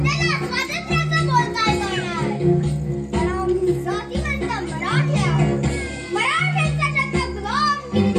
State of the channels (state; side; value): identical; both; correlation 1.00